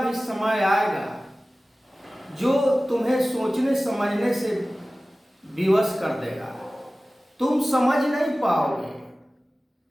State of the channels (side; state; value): both; normal; correlation 0.97